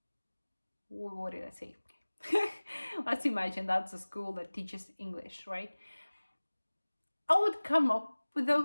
What did I say? Let's imagine that's a school that teaches English, right? I would come up with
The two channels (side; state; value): both; inverted; correlation -1.00